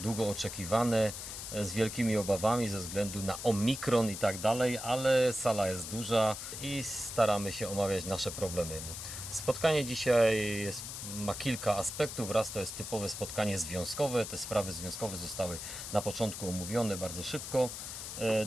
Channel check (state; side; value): noise; left; hiss, 8 dB below the sound